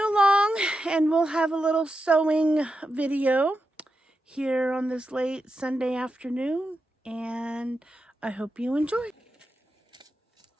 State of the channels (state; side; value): normal; both; correlation 0.88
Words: along and we'll have a little sowing video here on this late Sunday afternoon, and I hope you enjoy.